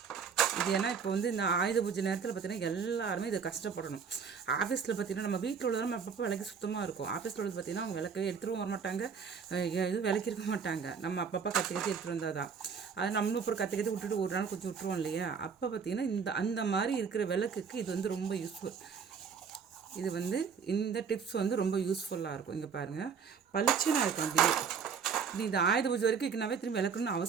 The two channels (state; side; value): quieter; left; 6.2 dB